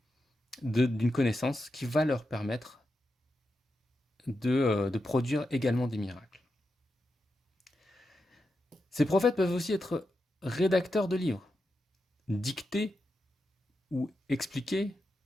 d'une connaissance qui va leur permettre de produire également des miracles. Ces prophètes peuvent aussi être rédacteurs de livres, dictés ou expliqués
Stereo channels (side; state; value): both; normal; correlation 0.88